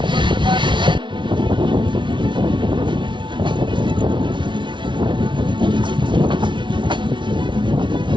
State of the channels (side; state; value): left; late; 0.24 ms